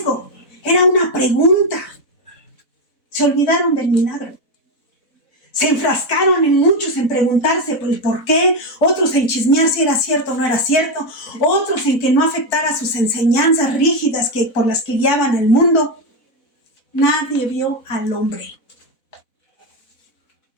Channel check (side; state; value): right; late; 4.0 ms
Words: Era una pregunta. Se olvidaron del milagro. Se enfrascaron en muchos en preguntarse el por qué, otros en chismear si era cierto o no era cierto, otros en que no afectara sus enseñanzas rígidas por las que guiaban al mundo. Nadie vio al hombre.